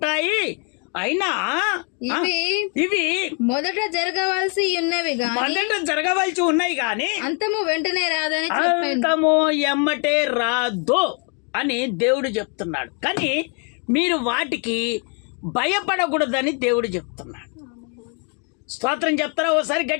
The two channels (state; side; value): quieter; right; 37.7 dB